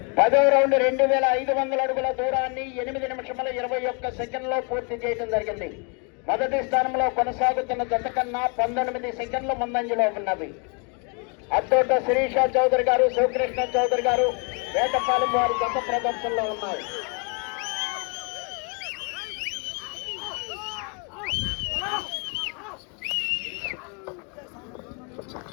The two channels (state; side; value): quieter; right; 35.7 dB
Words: పదవ రౌండ్ 2500 అడుగుల దూరాన్ని 8 నిమిషముల 21 సెకండ్లో పూర్తి చేయడం జరిగింది. మొదటి స్థానంలో కొనసాగుతున్న జత కన్నా 19 సెకండ్లు ముందంజలో ఉన్నవి. అత్తోట శిరీష చౌదరి గారు, శివకృష్ణ చౌదరి గారు వేటపాలెం వారి జత ప్రదర్శనలో ఉన్నారు.